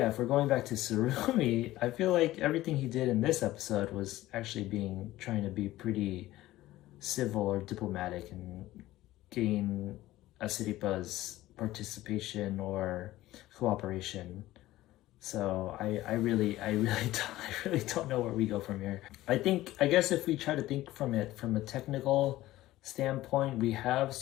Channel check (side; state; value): right; quieter; 16.1 dB